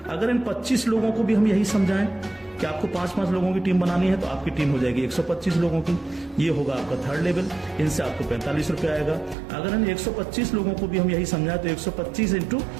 अगर इन 25 लोगों को भी हम यही समझाएं कि आपको 5-5 लोगों की टीम बनानी है तो आपकी टीम हो जाएगी 125 लोगों की, ये होगा आपका थर्ड लेवल। इनसे आपको 45 रुपए आएगा। अगर इन 125 लोगों को भी हम यही समझाएं तो 125 ×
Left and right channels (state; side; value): drops out; left; at 9.3 s